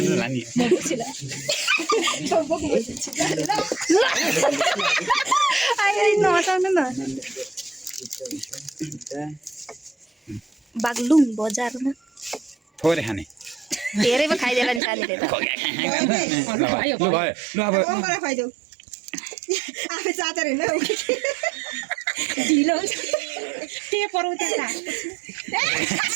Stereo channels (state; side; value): drops out; left; at 14.8 s